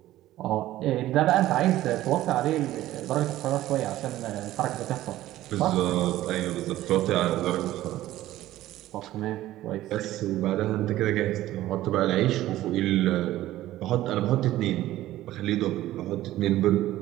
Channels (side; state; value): left; quieter; 14.9 dB